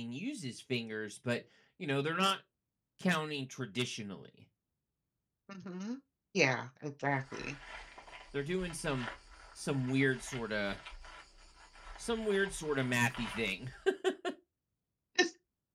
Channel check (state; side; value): identical; both; correlation 1.00